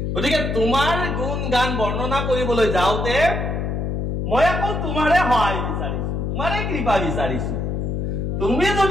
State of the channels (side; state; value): left; noise; hum, 1 dB below the sound